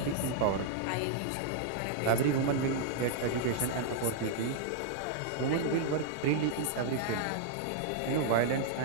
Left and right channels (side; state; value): both; different; correlation -0.01